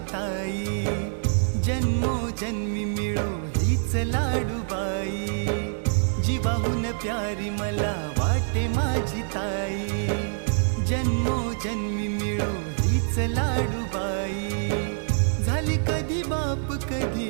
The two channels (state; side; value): silent; left; digital silence